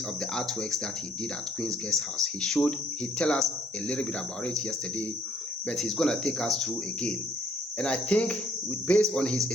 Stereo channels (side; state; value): both; normal; correlation 0.64